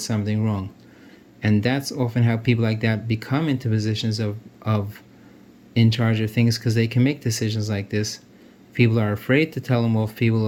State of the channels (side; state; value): both; identical; correlation 1.00